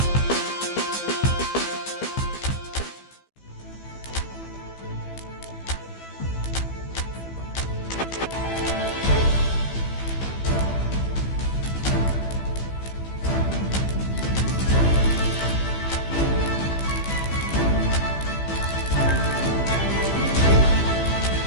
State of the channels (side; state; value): right; late; 15 ms